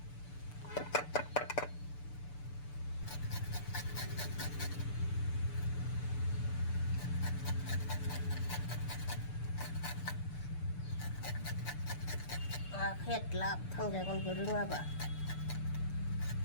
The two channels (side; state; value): right; late; 6.8 ms